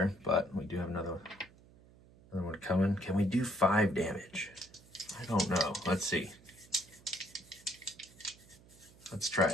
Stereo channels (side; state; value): right; noise; hum, 24 dB below the sound